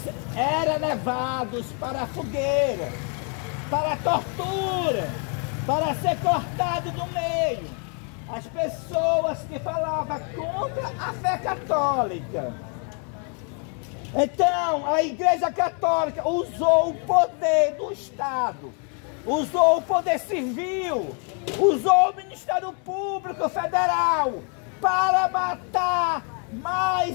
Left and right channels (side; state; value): right; quieter; 39.7 dB